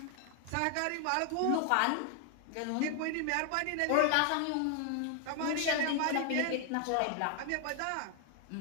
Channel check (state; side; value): different; both; correlation 0.00